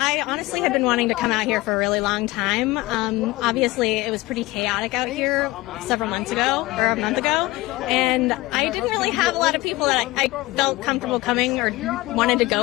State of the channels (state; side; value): quieter; right; 19.9 dB